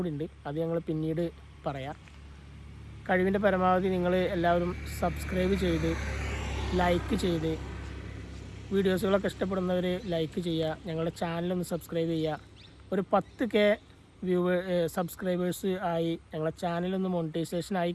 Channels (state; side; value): identical; both; correlation 1.00